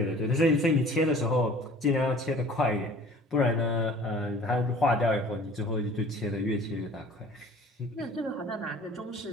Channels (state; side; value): normal; both; correlation 0.48